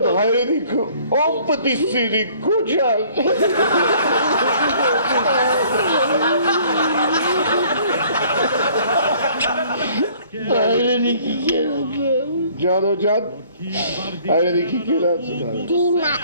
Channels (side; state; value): both; inverted; correlation -0.56